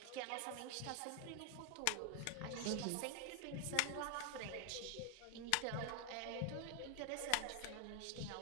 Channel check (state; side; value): different; both; correlation 0.00